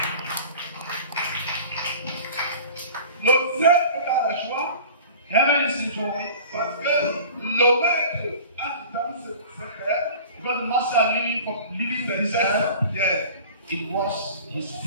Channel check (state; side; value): inverted; both; correlation -0.41